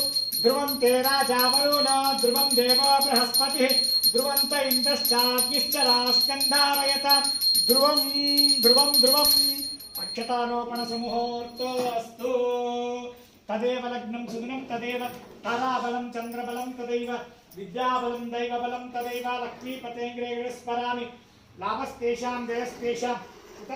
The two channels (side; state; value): both; identical; correlation 1.00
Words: ध्रुवं ते राजा वरुण ध्रुवं देव बृहस्पतिः ध्रुवन्त इन्द्रश्चाग्निश्च रास्कन्धारयत ध्रुवं ध्रुवं ध्रुवम् अक्षतारोपण सुमुहूर्तो अस्तु तदेव लग्नं सुदिनं तदेव ताराबलं चन्द्रबलं तदैव विद्याबलं दैवबलं तदैव लक्ष्मीपतेङ्ग्रे स्मरामि लाभस्तेषां जयस्तेषां